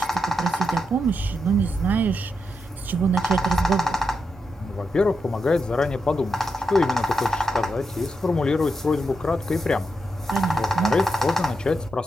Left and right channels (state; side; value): normal; both; correlation 0.85